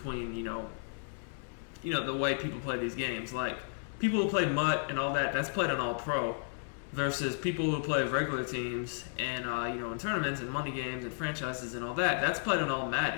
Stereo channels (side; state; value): right; silent; digital silence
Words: the way people play these games. Like, people who play MUT and all that, that's played on All Pro. Versus people who play regular teams and in tournaments and money games and franchises and all that, that's played on All